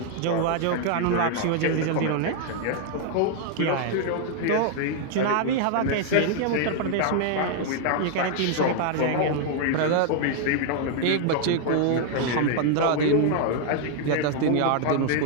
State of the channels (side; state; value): both; different; correlation 0.00